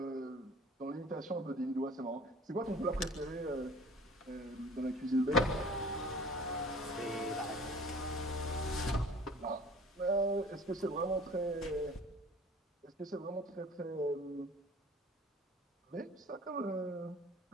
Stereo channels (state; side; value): normal; both; correlation 0.46